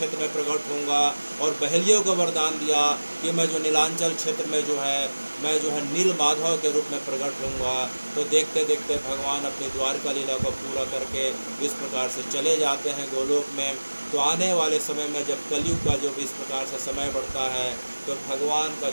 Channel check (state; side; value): inverted; both; correlation -1.00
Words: में प्रकट होऊंगा, और बहेलियों को वरदान दिया कि मैं जो नीलांचल क्षेत्र में जो है मैं जो है नील माधव के रूप में प्रकट होऊंगा। तो देखते देखते भगवान अपनी द्वारका लीला को पूरा करके इस प्रकार से चले जाते हैं गोलोक में। तो आने वाले समय में जब कलयुग का जो भी इस प्रकार से समय बढ़ता है तो भगवान का